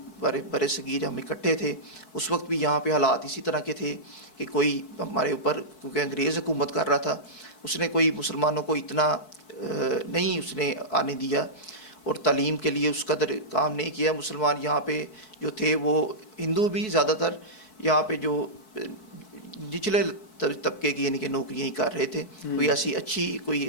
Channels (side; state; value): right; late; 4.6 ms